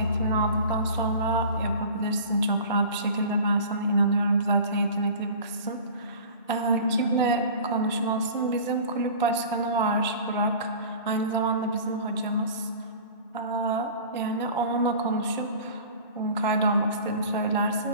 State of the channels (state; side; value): inverted; both; correlation -0.39